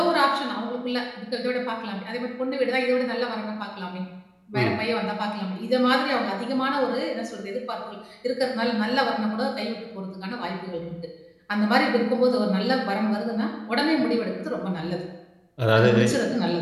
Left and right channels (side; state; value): both; identical; correlation 1.00